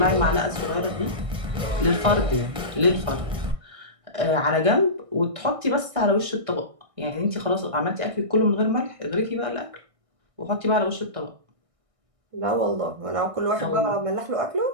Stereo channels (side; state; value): left; late; 1.6 ms